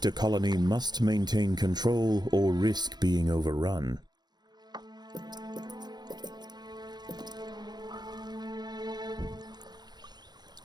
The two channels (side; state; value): left; late; 0.20 ms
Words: colony must maintain control or risk being overrun.